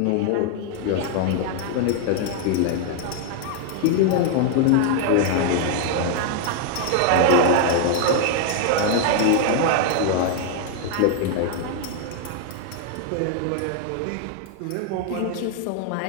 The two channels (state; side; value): different; both; correlation 0.00